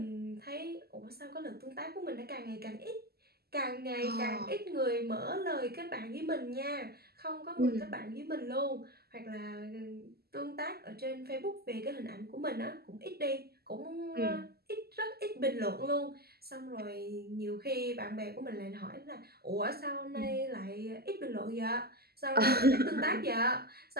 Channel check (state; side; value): late; left; 0.46 ms